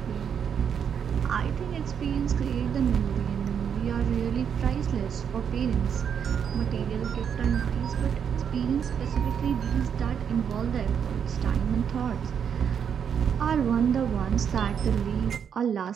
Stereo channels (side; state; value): left; quieter; 7.7 dB